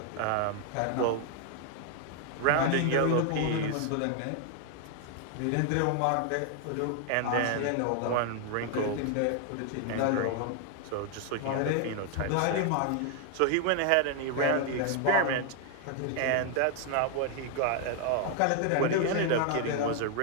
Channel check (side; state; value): both; different; correlation 0.00